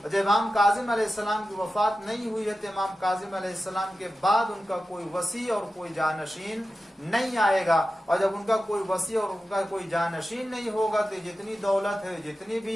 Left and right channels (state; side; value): normal; both; correlation 0.93